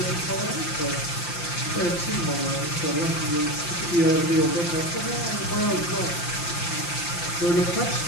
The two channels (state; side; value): late; right; 5.8 ms